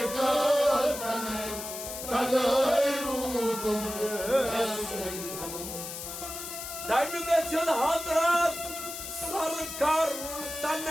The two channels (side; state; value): left; noise; hiss, 8 dB below the sound